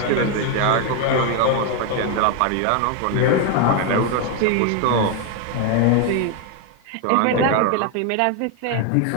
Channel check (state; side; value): different; both; correlation 0.01